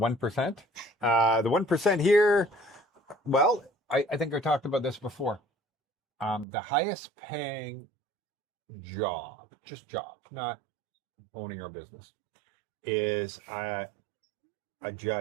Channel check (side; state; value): left; drops out; at 6.5 s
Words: The 1% here, well, I think I talked about this before. The highest paying job, just job, not owning your business, is a